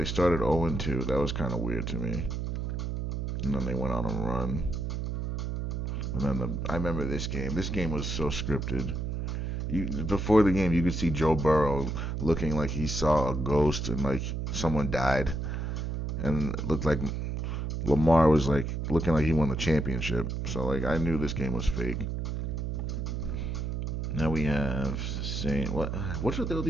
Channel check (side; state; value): right; noise; hum, 2 dB below the sound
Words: started 0-2. That was kind of weird to me. And then they went on a run. And then I remember this game. This game was so scripted. Before the game, you could see Joe Burrow looking like he saw a ghost and like someone died. And it looked like Lamar was like looking like he won the championship. So like I knew this game was fake. Now we have Saints. What's with all